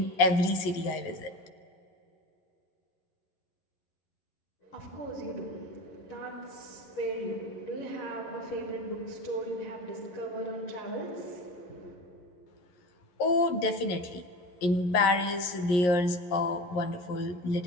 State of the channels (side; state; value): right; late; 11 ms